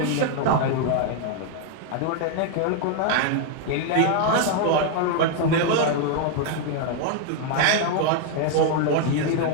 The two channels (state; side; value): different; both; correlation 0.00